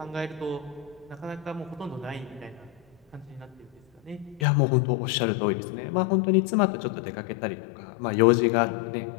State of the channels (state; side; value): drops out; right; at 4.5 s